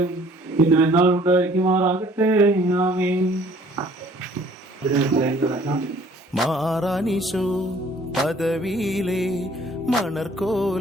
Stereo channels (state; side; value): normal; both; correlation 0.56